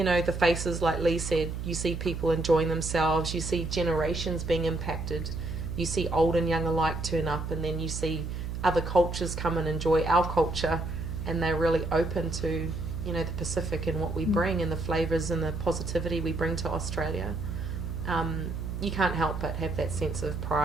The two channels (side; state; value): right; noise; hum, 5 dB below the sound